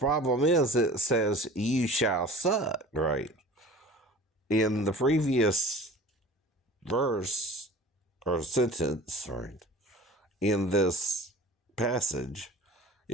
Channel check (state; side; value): normal; both; correlation 0.42